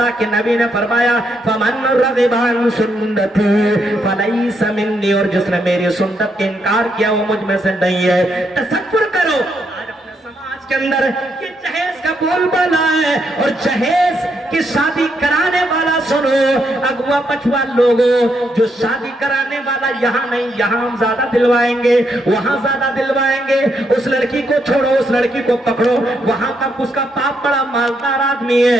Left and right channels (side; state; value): both; normal; correlation 0.78